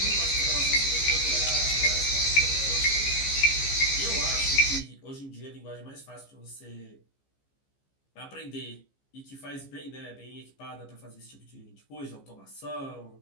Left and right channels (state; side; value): late; right; 15 ms